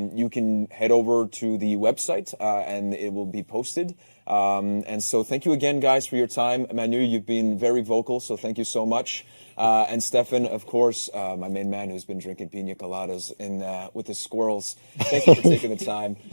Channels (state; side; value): inverted; both; correlation -1.00